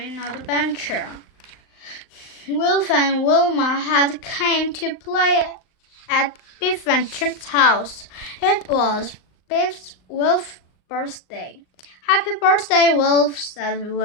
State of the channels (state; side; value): late; right; 38 ms